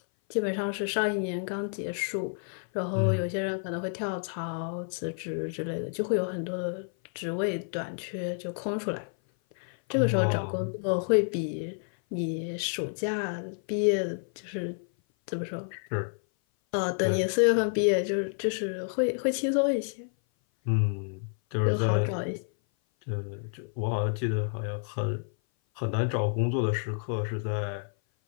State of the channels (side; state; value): right; silent; 56 dB below the other